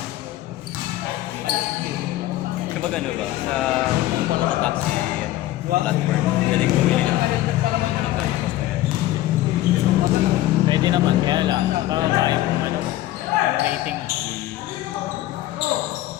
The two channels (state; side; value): quieter; right; 15.2 dB